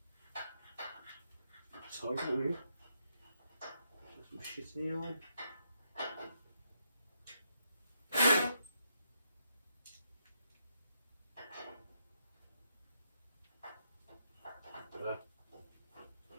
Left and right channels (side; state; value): both; inverted; correlation -0.80